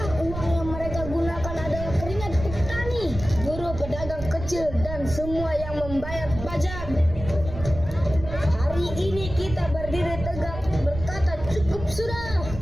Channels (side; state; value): right; noise; rumble, 9 dB below the sound